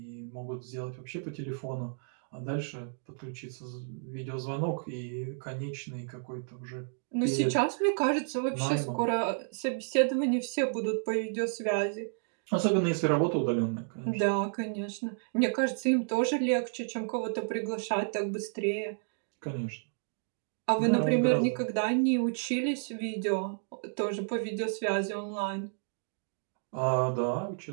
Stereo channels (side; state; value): left; silent; digital silence